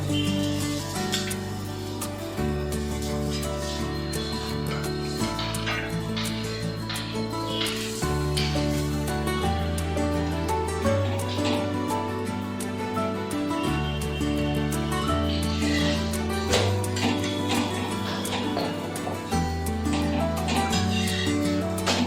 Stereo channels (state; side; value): identical; both; correlation 1.00